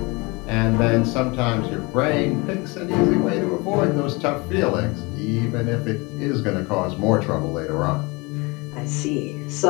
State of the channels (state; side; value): quieter; right; 26.6 dB